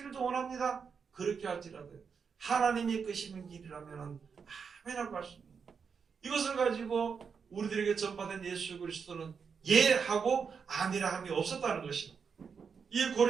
원합니다. 그렇게 할지라도 하나님이 끄시는 길이라면 아멘하고 할 수 있는 이것을 가지고 우리들에게 전파된 예수 그리스도는 예하고 아니라 함이 없었다는 것입니다. 이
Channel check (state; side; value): quieter; left; 6.1 dB